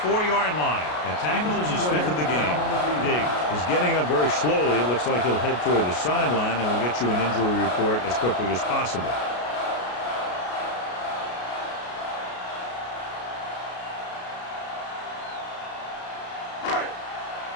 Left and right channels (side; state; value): right; late; 33 ms